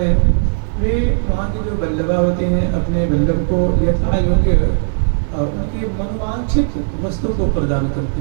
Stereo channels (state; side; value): silent; left; digital silence